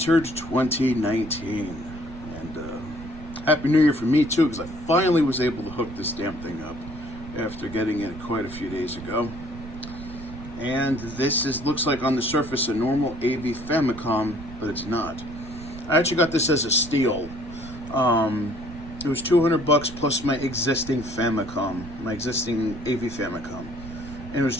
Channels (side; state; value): right; noise; rumble, 13 dB below the sound